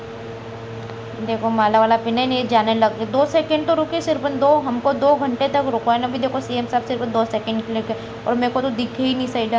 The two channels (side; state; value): both; identical; correlation 1.00